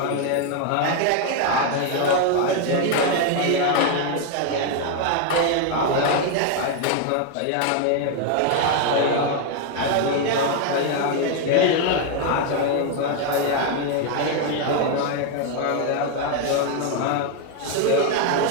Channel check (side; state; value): both; different; correlation 0.01